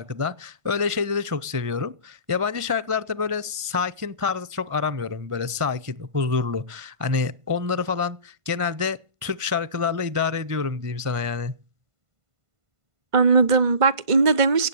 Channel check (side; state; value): left; late; 1.5 ms